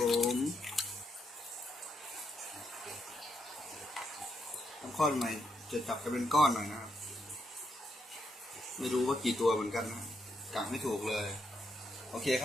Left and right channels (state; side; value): normal; both; correlation 0.79